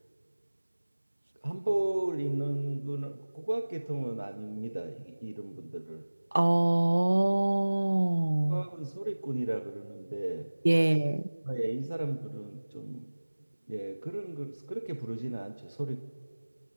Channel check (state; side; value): inverted; both; correlation -1.00